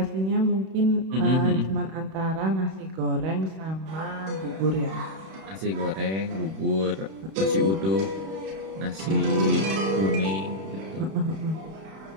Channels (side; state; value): left; late; 31 ms